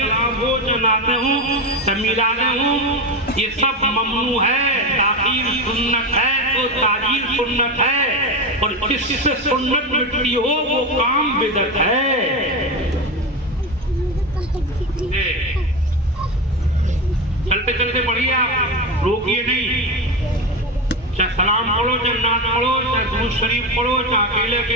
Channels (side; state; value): both; normal; correlation 0.19